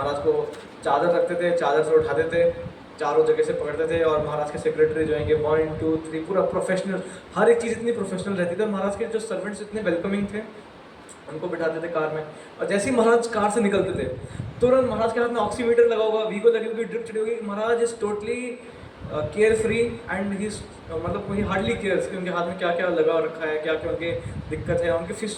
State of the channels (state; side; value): identical; both; correlation 1.00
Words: को चादर रखते थे, चादर से उठाते थे, चारों जगह से पकड़ते थे, और महाराज के सेक्रेटरी जो आएंगे 1, 2, 3 पूरा प्रोफेशनल, हर एक चीज़ इतनी प्रोफेशनल रहती थी। महाराज के जो सर्वेंट्स इतने वेलकमिंग थे, उनको बिठाते थे कार में, और जैसे ही महाराज कार से निकलते थे तुरंत महाराज के हाथ में ऑक्सीमीटर लगा होगा, वीगो लगी होगी, ड्रिप चढ़ी होगी। Maharaj is totally care free and he मतलब वही हार्डली केयर्स कि उनके हाथ में क्या क्या लगा रखा है, क्या क्या उनके दिक्कत है।